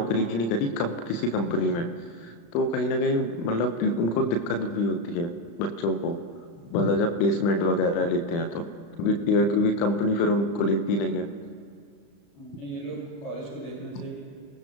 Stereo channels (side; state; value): right; late; 35 ms